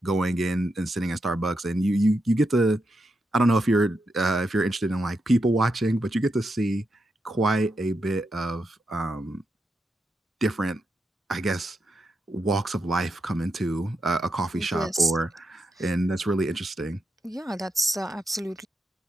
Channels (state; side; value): normal; both; correlation 0.84